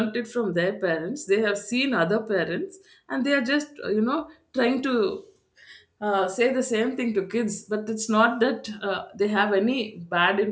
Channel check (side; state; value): both; identical; correlation 1.00